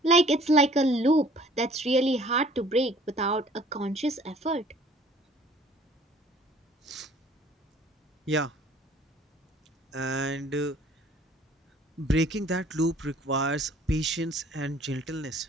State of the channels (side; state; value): both; normal; correlation 0.54